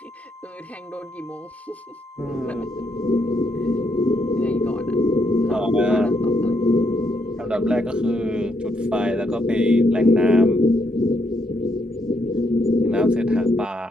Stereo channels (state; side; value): normal; both; correlation 0.76